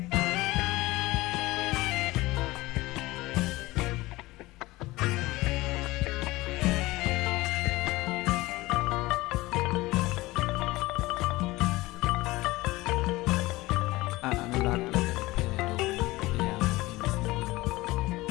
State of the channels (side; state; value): right; quieter; 19.8 dB